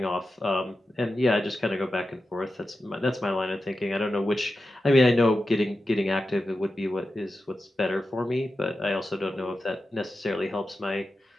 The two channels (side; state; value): both; normal; correlation 0.91